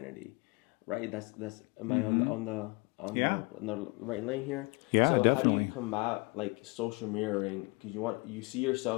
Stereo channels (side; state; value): right; quieter; 27.8 dB